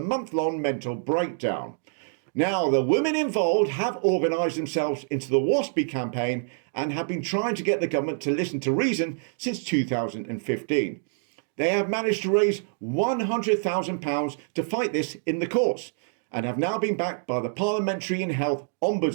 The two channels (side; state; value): left; silent; digital silence